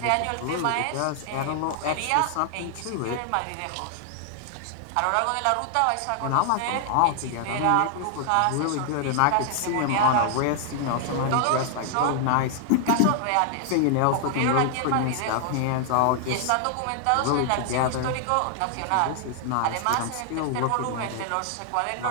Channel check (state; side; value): different; both; correlation 0.00